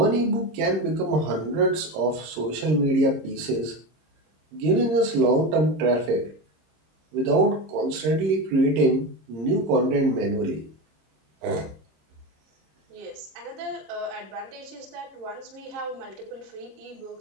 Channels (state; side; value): late; left; 26 ms